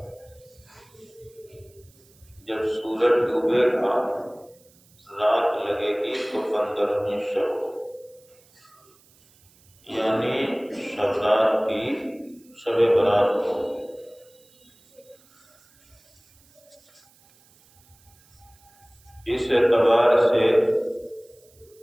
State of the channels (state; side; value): noise; right; hiss, 30 dB below the sound